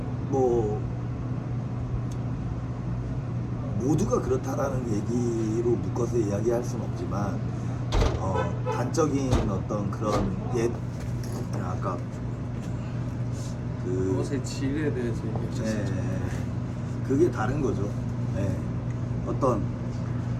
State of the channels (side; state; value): both; identical; correlation 1.00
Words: 뭐 모두가 그렇다라는 얘기로 묶어서 이야기할 수는 없지만 단적인 어떤 그런 아까 옷의 질에 대해서 얘기하셨죠. 그게 다른 거죠. 네.